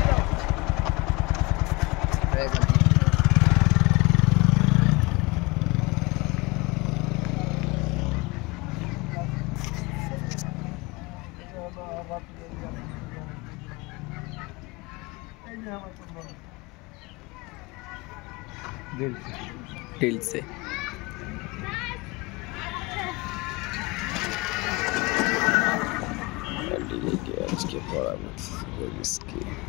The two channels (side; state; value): right; quieter; 24.7 dB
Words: दिल से आज के पड़ा इसकी